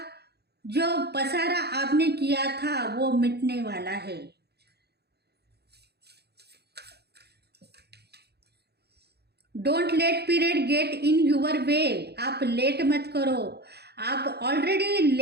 जो पसारा आपने किया था वो मिटने वाला है। Don't let period get in your way, आप लेट मत करो, आप ऑलरेडी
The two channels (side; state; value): left; late; 0.48 ms